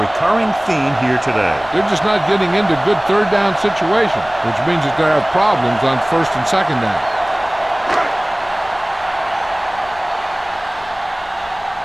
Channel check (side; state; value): left; noise; rumble, 23 dB below the sound